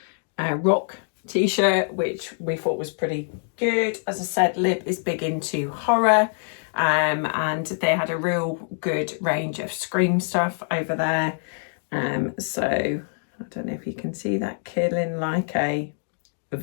rock t-shirt, which we thought was pretty good. As I said, Lib is big into horror, and they had a real good range of Scream stuff over there. So I don't know if you can see that, killing like a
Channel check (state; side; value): silent; right; digital silence